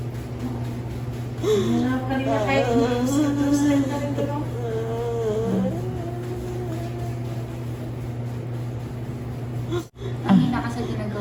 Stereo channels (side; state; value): both; identical; correlation 1.00